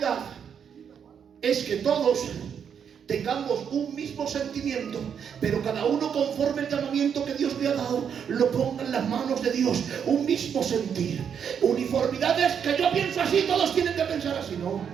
es que todos tengamos un mismo sentimiento, pero cada uno, conforme el llamamiento que Dios le ha dado, lo ponga en las manos de Dios. Un mismo sentir. Uniformidad es que yo pienso así, todos tienen que pensar así. No,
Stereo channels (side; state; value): left; quieter; 7.7 dB